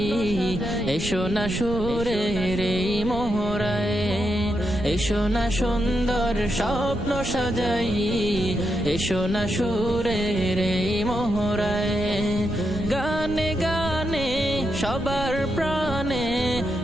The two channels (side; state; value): right; noise; rumble, 9 dB below the sound